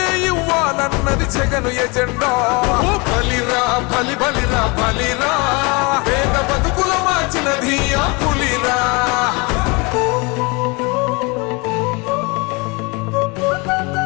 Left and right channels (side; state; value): right; quieter; 28.3 dB